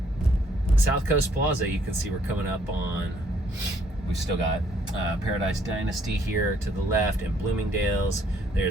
South Coast Plaza, you can see we're coming up on. We've still got Paradise Dynasty here to the left, and Bloomingdale's.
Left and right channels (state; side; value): normal; both; correlation 0.66